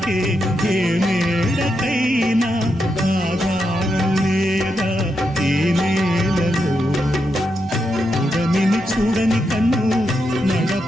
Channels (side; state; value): both; normal; correlation 0.84